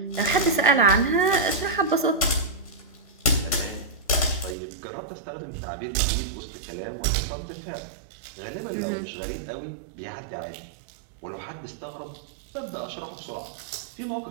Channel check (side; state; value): left; drops out; at 4.5 s